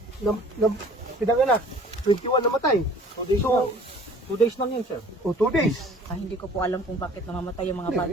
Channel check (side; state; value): both; normal; correlation 0.50